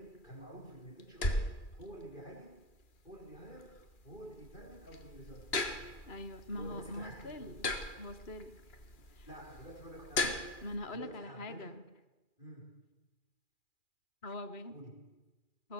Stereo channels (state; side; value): late; right; 2.4 ms